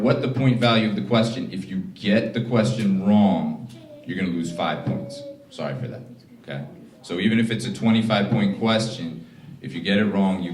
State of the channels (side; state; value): both; identical; correlation 1.00